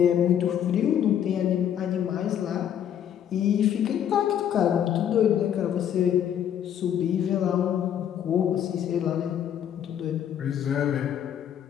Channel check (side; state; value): right; quieter; 9.6 dB